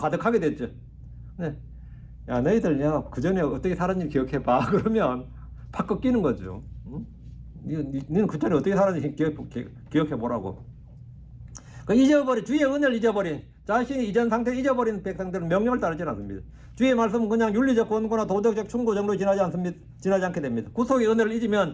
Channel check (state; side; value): identical; both; correlation 1.00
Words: 됐죠. 네. 야, 너희들 그 전에 어떻게 살았는지 기억해봐. 그러면 팍 꺾이는 거죠. 응? 너는 그 전에 어떻게 살았는지 기억해보라고. 주의 은혜를 잊어버린, 자신의 이전 상태를 잊어버린 백성들은 명령을 따르지 않습니다. 주의 말씀은 그냥 윤리적 권고나 도덕적 충고 정도로 지나지 않게 됩니다. 구속의 은혜를